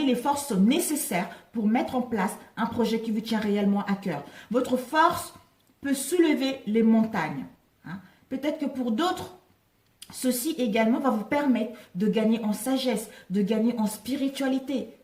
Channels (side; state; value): both; identical; correlation 1.00